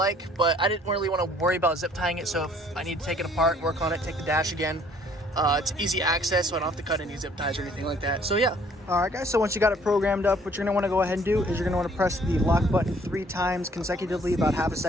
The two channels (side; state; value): both; normal; correlation 0.59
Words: but I didn't really want to worry about zip tying it. So if I need to take it apart, work on it, take the dash again, it's easy access, so I don't have to cut any zip ties or anything like that. So yeah. All right, guys, so once you got it programmed up, what you're gonna wanna go ahead and do is you're gonna wanna press the lock button 3 times consecutively, about half a